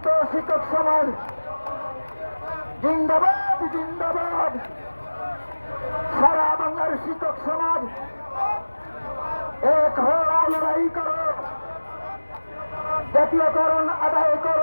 শিক্ষক সমাজ জিন্দাবাদ, জিন্দাবাদ। সারা বাংলার শিক্ষক সমাজ এক হও, লড়াই করো, জাতীয়করণ আদায়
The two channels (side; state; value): both; inverted; correlation -1.00